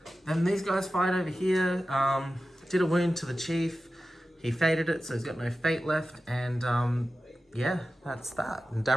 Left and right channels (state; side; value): normal; both; correlation 0.94